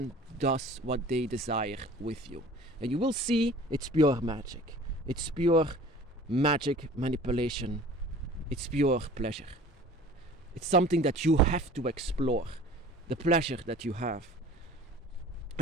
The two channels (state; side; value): normal; both; correlation 0.45